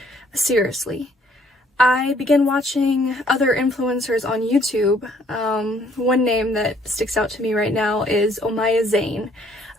Seriously. I began watching other influencers on YouTube. One name that sticks out to me right now is Omaya Zain.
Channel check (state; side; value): normal; both; correlation 0.63